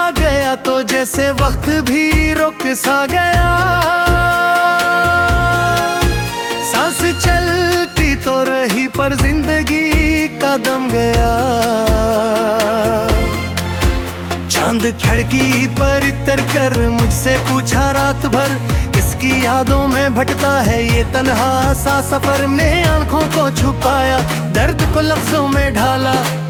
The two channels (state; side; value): identical; both; correlation 1.00